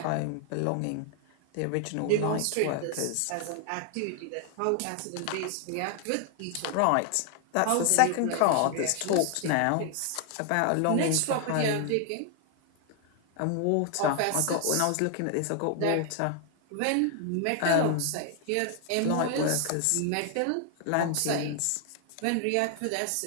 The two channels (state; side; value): different; both; correlation 0.00